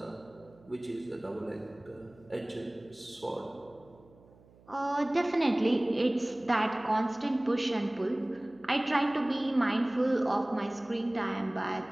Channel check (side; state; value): right; noise; hum, 26 dB below the sound